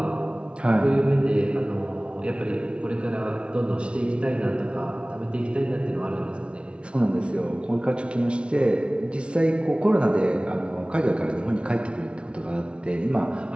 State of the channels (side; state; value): left; late; 0.059 ms